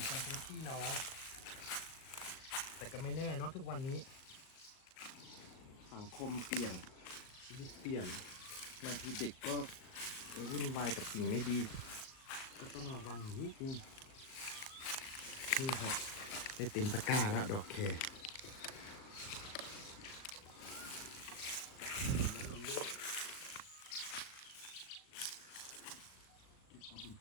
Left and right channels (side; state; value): right; late; 38 ms